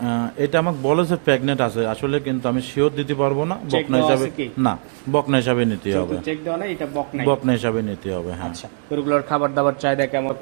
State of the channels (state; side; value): silent; left; digital silence